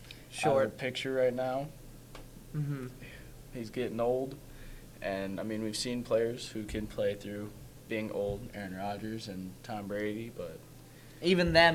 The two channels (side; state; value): both; identical; correlation 1.00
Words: out of the picture right now. Mm-hmm. He's getting old, and I mean we've seen players who can play through being old, Aaron Rodgers and Tom Brady, but even